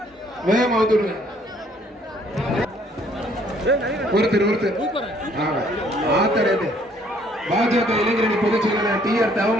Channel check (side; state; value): both; normal; correlation 0.62